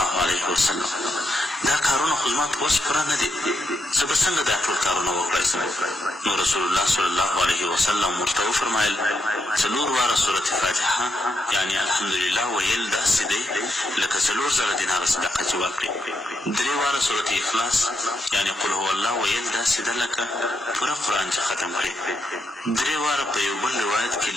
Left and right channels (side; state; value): both; normal; correlation 0.81